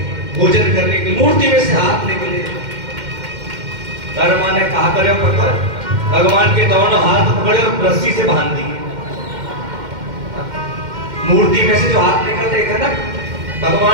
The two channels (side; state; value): left; late; 2.1 ms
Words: भोजन करने की, मूर्ति में से हाथ निकले। कर्मा ने कहा करे पकड़, भगवान के दोनों हाथ पकड़े और रस्सी से बांध दिए। मूर्ति में से जो हाथ निकल रहे थे ना